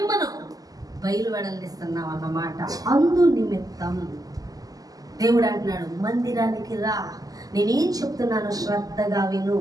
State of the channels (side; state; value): left; late; 0.17 ms